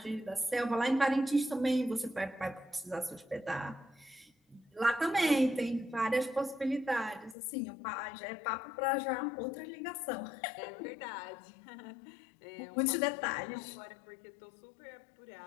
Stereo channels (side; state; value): right; drops out; at 7.4 s